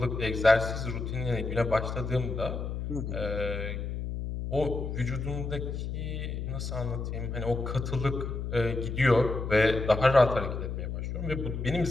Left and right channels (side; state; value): left; noise; hum, 4 dB below the sound